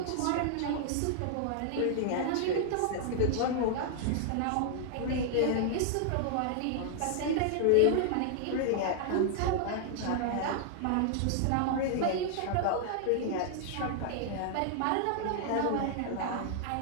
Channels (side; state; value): both; different; correlation -0.01